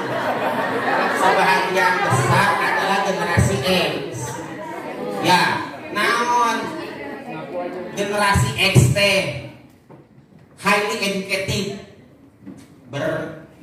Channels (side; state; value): both; identical; correlation 1.00